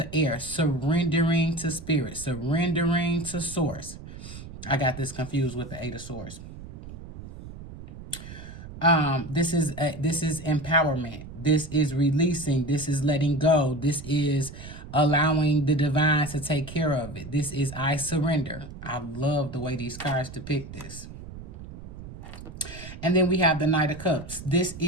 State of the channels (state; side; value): noise; right; rumble, 13 dB below the sound